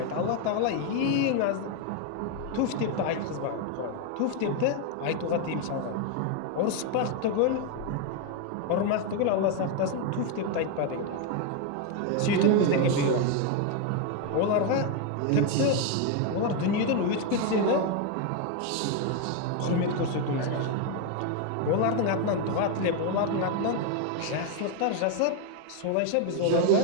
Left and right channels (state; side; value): different; both; correlation 0.01